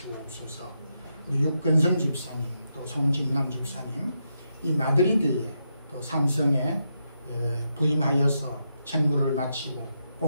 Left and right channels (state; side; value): inverted; both; correlation -0.84